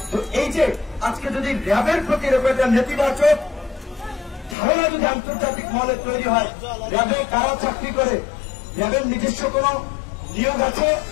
তো এই যে আজকে যদি র্যাবের প্রতি একটা নেতিবাচক ধারণা যদি আন্তর্জাতিক মহলে তৈরি হয়, র্যাবে কারা চাকরি করে, র্যাবের নিজস্ব কোন নিয়োগ আছে,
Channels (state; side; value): drops out; right; at 4.5 s